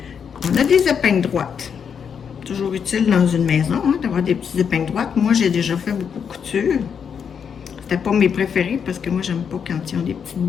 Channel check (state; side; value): quieter; right; 7.1 dB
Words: On a des épingles droites. Toujours utile dans une maison, hein, d'avoir des petites épingles droites. Moi, j'ai déjà fait beaucoup de couture. C'était pas mes préférés, parce que moi, j'aime pas quand ils ont des petites